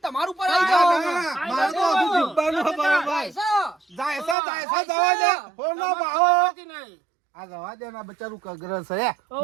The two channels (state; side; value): drops out; left; at 4.4 s